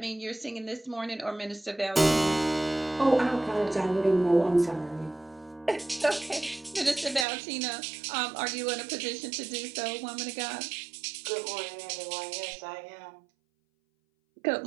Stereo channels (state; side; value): drops out; left; at 7.2 s